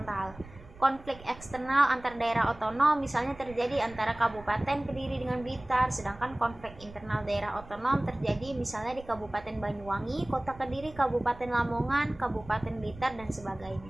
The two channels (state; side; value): noise; right; rumble, 19 dB below the sound